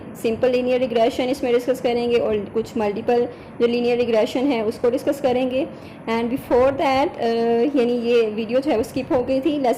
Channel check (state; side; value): identical; both; correlation 1.00